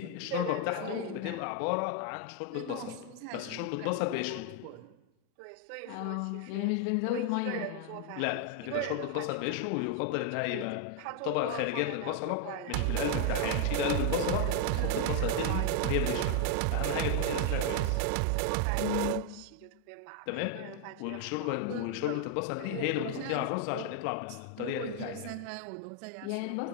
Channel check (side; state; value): both; different; correlation 0.00